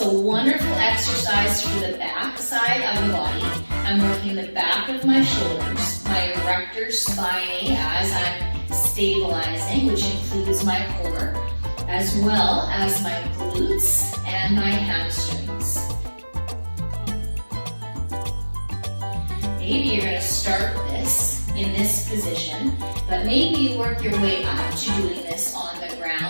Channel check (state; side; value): inverted; both; correlation -1.00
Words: a wonderful exercise for the back side of the body. I'm working the back of my shoulders, my erector spinae as I'm stabilizing, which includes my core, as well as my glutes and my hamstrings. Maybe you're going to start this in this position, but maybe you work your way up to doing this on the